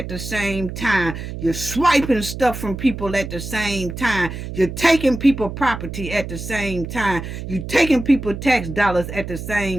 the same time. You're swiping stuff from people at the same time. You're taking people property at the same time. You're taking people tax dollars at the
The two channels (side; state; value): right; noise; hum, 8 dB below the sound